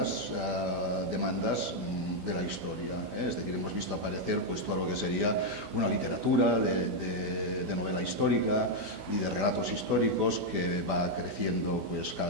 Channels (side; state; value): left; late; 16 ms